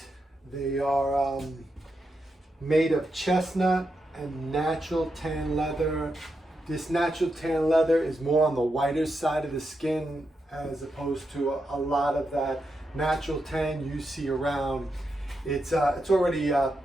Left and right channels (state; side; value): normal; both; correlation 0.85